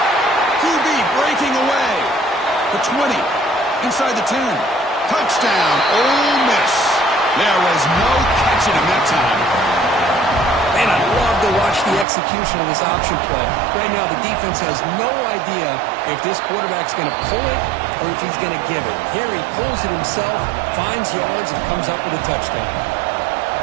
QB breaking away. The 20. Inside the 10. Touchdown, Ole Miss. There was no catching him that time. Man, I love to watch the execution of this option play. Right now, the defense has no idea if this quarterback's going to pull it or if he's going to give it. Here he pulls it himself, finds yards, and comes up with a touchdown.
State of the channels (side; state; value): left; drops out; at 12.1 s